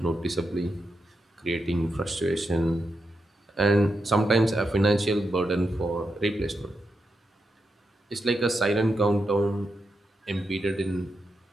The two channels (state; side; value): normal; both; correlation 0.86